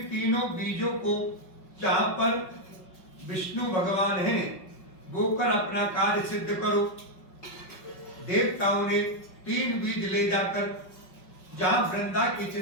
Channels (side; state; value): right; late; 5.4 ms